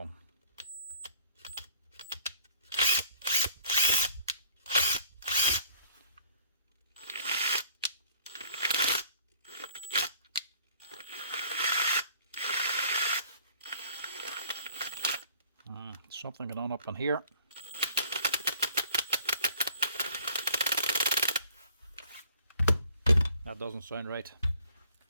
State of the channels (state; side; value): inverted; both; correlation -0.55